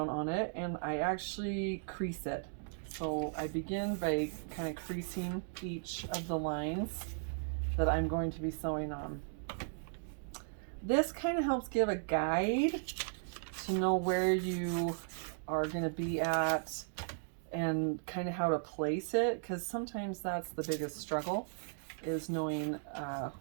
on it and I actually crease it. So I begin by kind of creasing each of the lines that I'm going to be sewing on. This kind of helps give a guide to know where you are going to be at and kind of how to place it, because sometimes that's the biggest struggle, is knowing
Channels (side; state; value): left; silent; digital silence